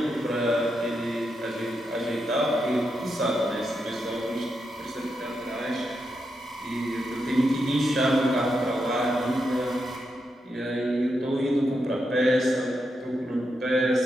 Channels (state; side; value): normal; both; correlation 0.84